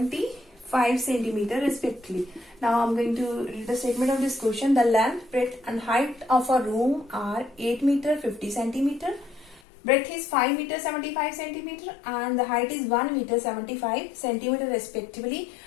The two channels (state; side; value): drops out; right; at 9.6 s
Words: centimeter respectively. Now I am going to read the statement of this question. The length, breadth and height of a room are 8 meter 50 centimeter. Breadth is 5 meter 75 centimeter and the height is 1 meter 75 centimeter respectively.